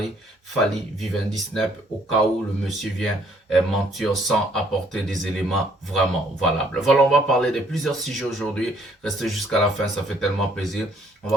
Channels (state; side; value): normal; both; correlation 0.64